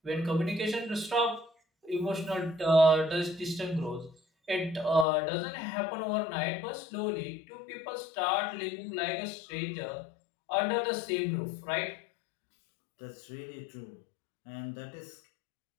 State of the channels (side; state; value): right; drops out; at 5.1 s